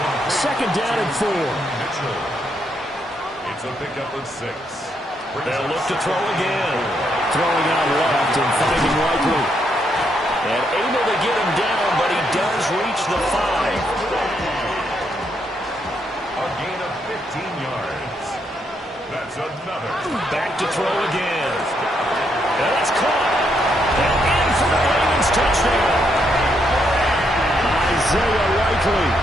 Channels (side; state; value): both; normal; correlation 0.76